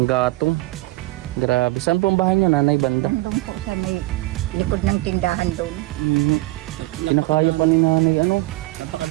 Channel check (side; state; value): left; quieter; 19.9 dB